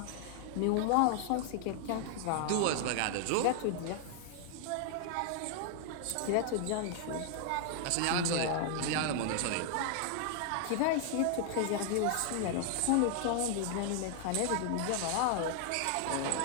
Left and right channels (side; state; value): both; different; correlation 0.00